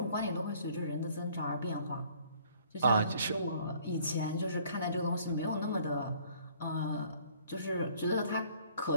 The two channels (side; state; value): both; inverted; correlation -0.58